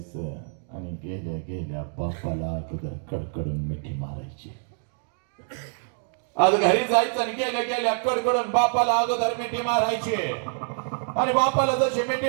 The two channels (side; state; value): left; silent; 57 dB below the other